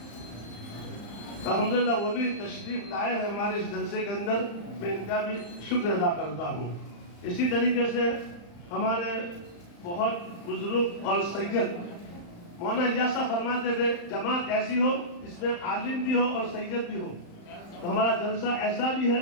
الحمدللہ وہ بھی تشریف لائے ہیں ہمارے اس جلسے کے اندر، میں ان کا بھی شکر ادا کرتا ہوں۔ اسی طریقے سے ہمارے بہت بزرگ اور سید مولانا ایاسا فرماتے تھے جماعت ایسی ہو جس میں عالم بھی ہو اور سید بھی ہو، تو ہمارا جلسہ ایسا بھی ہے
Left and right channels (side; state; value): right; late; 35 ms